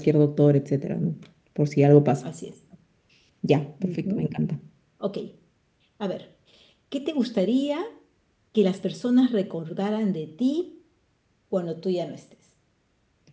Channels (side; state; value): both; identical; correlation 1.00